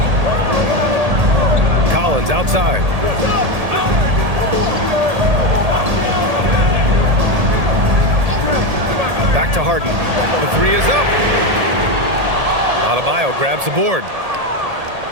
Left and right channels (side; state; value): left; late; 1.8 ms